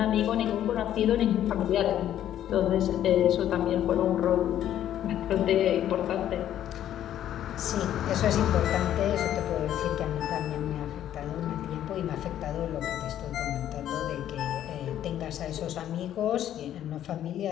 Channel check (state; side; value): quieter; right; 11.3 dB